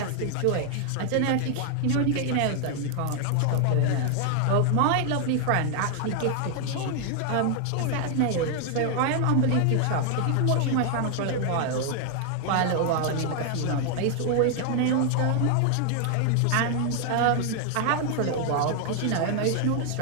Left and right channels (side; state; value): both; different; correlation 0.00